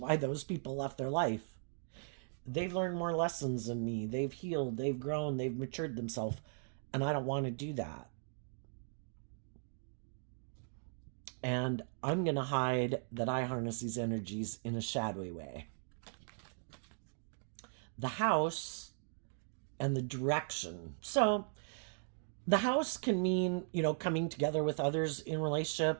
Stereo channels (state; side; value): silent; left; digital silence